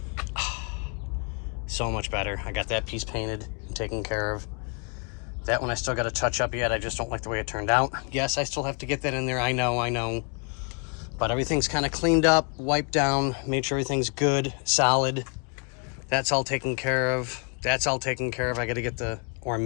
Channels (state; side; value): quieter; right; 38.1 dB